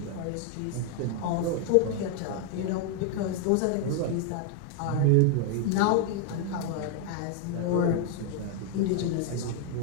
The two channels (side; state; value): both; different; correlation 0.00